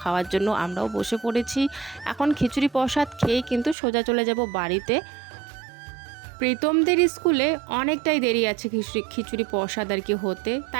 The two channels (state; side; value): drops out; left; at 3.8 s